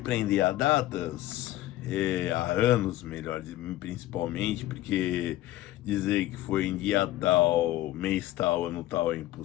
a datas, a anos, melhor, principalmente, porque dizer que foi em dia tal, mês tal, ano tal é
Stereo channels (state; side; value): quieter; right; 15.4 dB